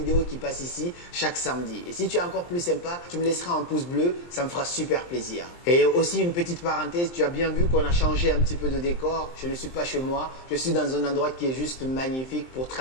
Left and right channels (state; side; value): late; right; 23 ms